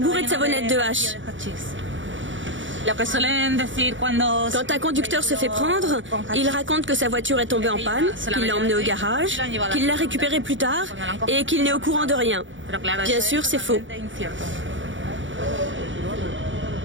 de savonnettes de hache. Quand un conducteur se fait prendre, il raconte que sa voiture est tombée en panne, qu'il l'a emmenée au garage, qu'il l'a récupérée plus tard et qu'il n'est au courant de rien. Bien sûr, c'est faux.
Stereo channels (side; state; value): left; late; 0.56 ms